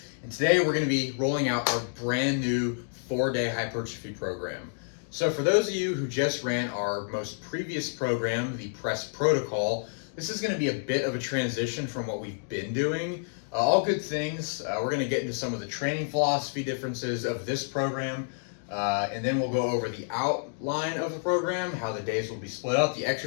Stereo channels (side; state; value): right; silent; digital silence